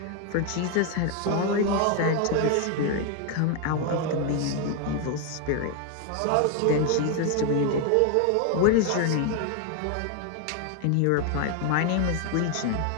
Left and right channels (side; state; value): both; different; correlation 0.01